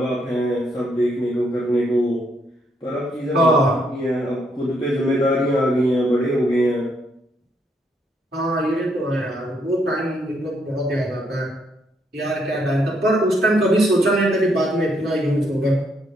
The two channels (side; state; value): both; normal; correlation 0.74